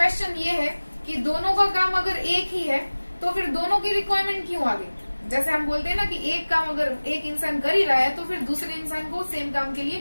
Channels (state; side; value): inverted; both; correlation -1.00